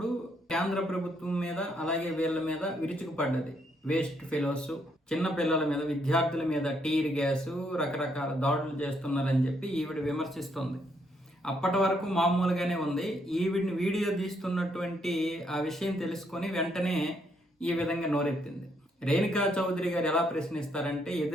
కేంద్ర ప్రభుత్వం మీద అలాగే వీళ్ళ మీద విరుచుకుపడ్డది. వేస్ట్ ఫెలోస్, చిన్న పిల్లల మీద, విద్యార్థుల మీద టీర్ గ్యాసు, రకరకాల దాడులు చేస్తున్నారని చెప్పి ఈవిడ విమర్శిస్తుంది. అప్పటి వరకు మామూలుగానే ఉంది. ఈవిడిని వీడియో తీస్తున్నటువంటి ఆ విషయం తెలుసుకొని వెంటనే ఈ విధంగా నోరెత్తింది. రేణుకా చౌదరి గారు ఎలా ప్రశ్నిస్తారంటే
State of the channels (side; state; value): both; normal; correlation 0.73